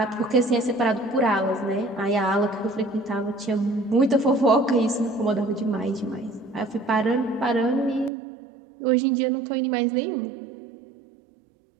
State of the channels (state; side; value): drops out; left; at 8.1 s